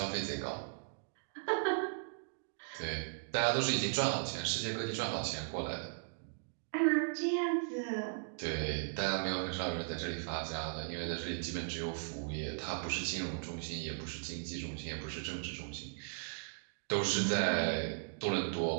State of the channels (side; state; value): left; silent; digital silence